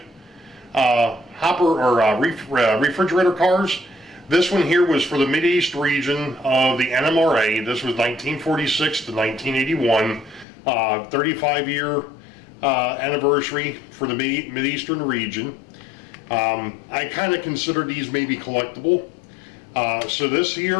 hopper or refrigerator cars. This one here was for the Mideast region of the NMRA. This was 1946 to 1981, 35-year anniversary for the Mideastern region. I kind of consider these maybe collectible. So this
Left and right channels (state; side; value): drops out; right; at 10.5 s